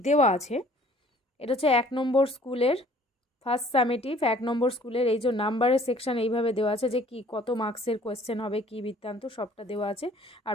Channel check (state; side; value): normal; both; correlation 0.55